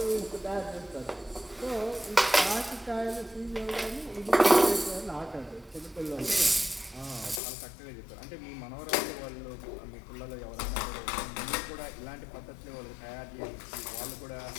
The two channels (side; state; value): right; drops out; at 7.4 s